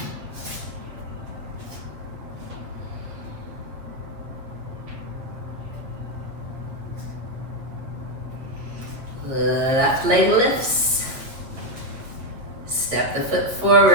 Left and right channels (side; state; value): left; late; 8.1 ms